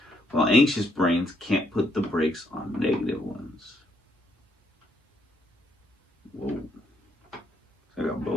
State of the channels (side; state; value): both; normal; correlation 0.73